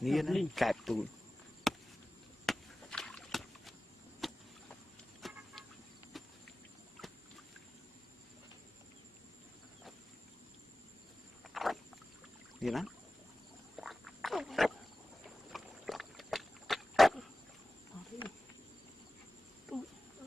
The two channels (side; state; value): both; normal; correlation 0.96